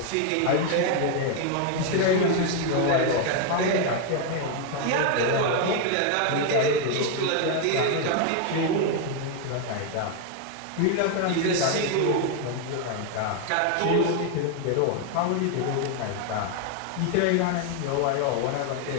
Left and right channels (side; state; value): both; different; correlation 0.00